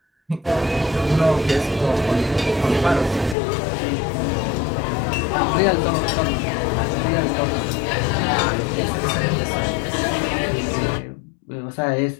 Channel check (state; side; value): drops out; right; at 3.4 s